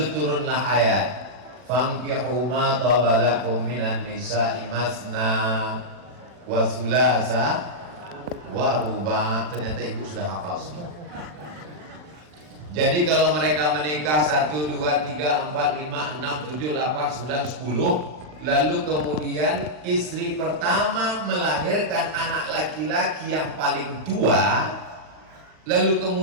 turunlah ayat, fankihu ma tabalakum minan nisa'i masna wa thulatha wa ruba. Ternyata ibu sudah hafal semua. Jadi kalau mereka menikah 1, 2, 3, 4, 5, 6, 7, 8, 9, 10, lalu kemudian istri pertama melahirkan anak laki-laki yang paling tua, lalu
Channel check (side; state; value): left; late; 40 ms